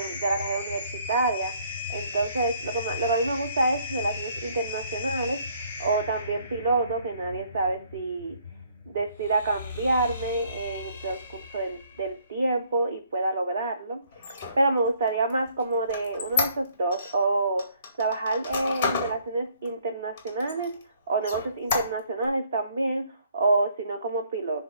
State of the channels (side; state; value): both; inverted; correlation -0.64